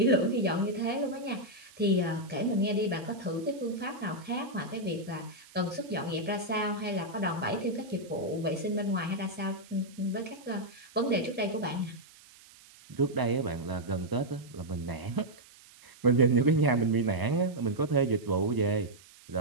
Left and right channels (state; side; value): noise; right; hiss, 23 dB below the sound